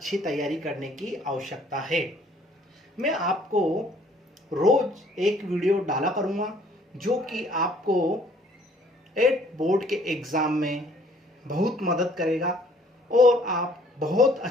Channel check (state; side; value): normal; both; correlation 0.59